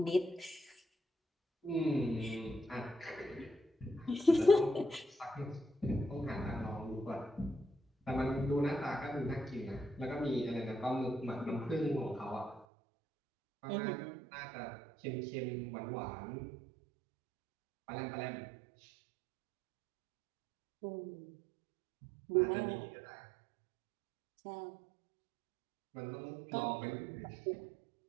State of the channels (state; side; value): drops out; left; at 12.7 s